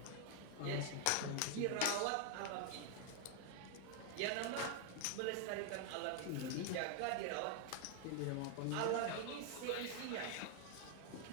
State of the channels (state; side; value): different; both; correlation 0.01